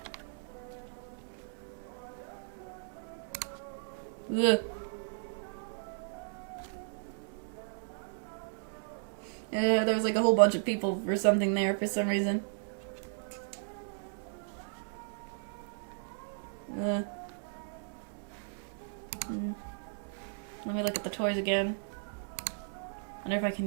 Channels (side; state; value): left; silent; digital silence